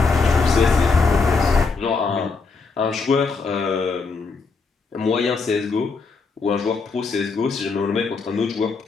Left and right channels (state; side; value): quieter; right; 4.5 dB